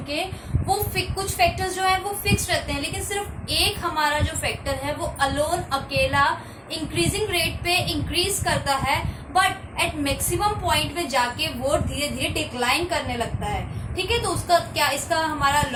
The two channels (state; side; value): identical; both; correlation 1.00